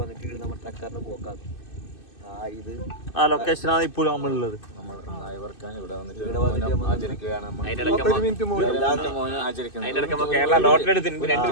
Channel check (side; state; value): right; late; 2.6 ms